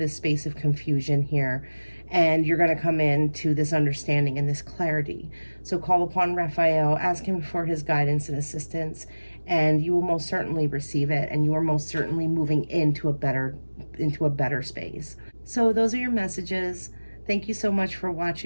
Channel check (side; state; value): both; inverted; correlation -1.00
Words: space of confusion here, and you're going to come into this understanding and this clarity. So call upon Raphael, ask him for his guidance and assistance, and you will most certainly receive it, and you are most certainly moving into a better space. So those are your messages. Thank you so much for